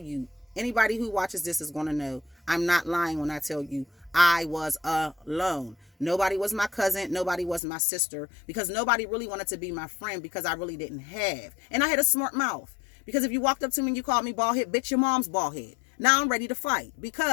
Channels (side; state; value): right; drops out; at 7.6 s